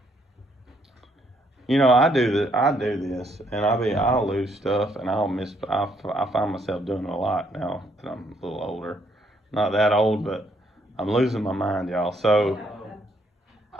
I do this, and I'll lose stuff, and I find myself doing it a lot now that I'm a little older. Not that old, but I'm losing my mind, y'all. So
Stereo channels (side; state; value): both; normal; correlation 0.70